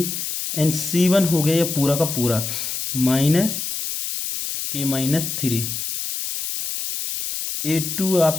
एंड c1 हो गया ये पूरा का पूरा -k-3। a2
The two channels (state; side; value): noise; left; hiss, 4 dB below the sound